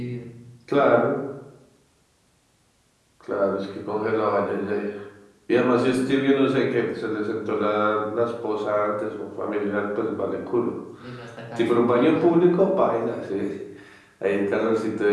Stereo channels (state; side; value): identical; both; correlation 1.00